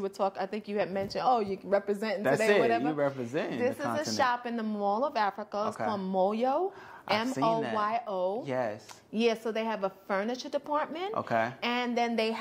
were talking, I think you had mentioned, you representing That's today, it. whatever. You representing This the is continent. a shop in the Mall of Africa. It's called Moyo. I've seen that. Moyo. Yes. Yeah, so they have a furniture department. Okay. And then they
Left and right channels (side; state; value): both; identical; correlation 1.00